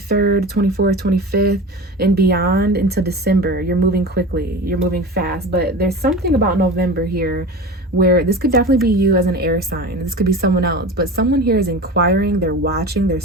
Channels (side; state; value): both; normal; correlation 0.32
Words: 24th, 25th, and beyond into December. You're moving quickly. You're moving fast. But there's something about November here where this could definitely be you as an air sign. This could be someone else. But someone here is inquiring. They're watching. They're